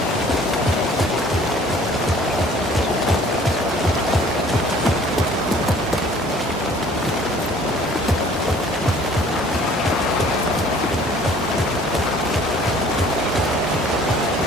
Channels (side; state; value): both; normal; correlation 0.53